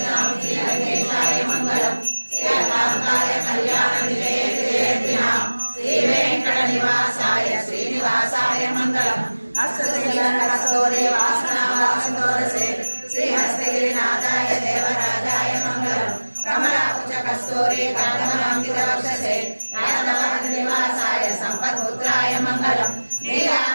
गौरी कांतमांकितवक्षसे राजभवन निवासाय संपत्पुत्राय मंगलम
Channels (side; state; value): both; inverted; correlation -1.00